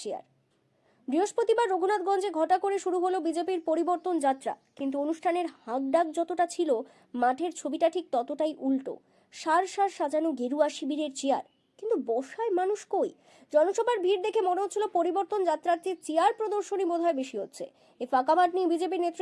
চেয়ার? বৃহস্পতিবার রঘুনাথগঞ্জে ঘটা করে শুরু হলো বিজেপির পরিবর্তন যাত্রা, কিন্তু অনুষ্ঠানের হাঁকডাক যতটা ছিল মাঠের ছবিটা ঠিক ততটাই উল্টো। সার সার সাজানো গেরুয়া শিবিরের চেয়ার, কিন্তু বসায় মানুষ কই? জনসভার ভিড় দেখে মনে হচ্ছিল পরিবর্তন যাত্রার চেয়ে চেয়ার প্রদর্শনী বোধহয় বেশি হচ্ছে। এই ফাঁকা মাঠ নিয়ে বিজেপি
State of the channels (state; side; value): identical; both; correlation 1.00